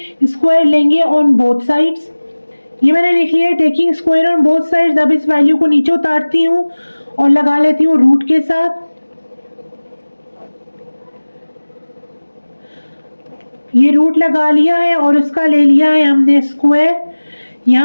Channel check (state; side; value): inverted; both; correlation -1.00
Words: स्क्वायर लेंगे ऑन बोथ साइड्स। ये मैंने लिख लिया है taking square on both sides. अब इस वैल्यू को नीचे उतारती हूँ और लगा लेती हूँ रूट के साथ। ये रूट लगा लिया है और उसका ले लिया है हमने स्क्वायर।